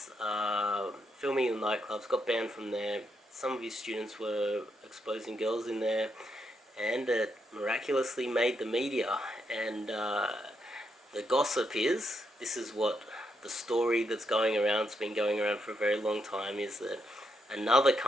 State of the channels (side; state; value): both; normal; correlation 0.80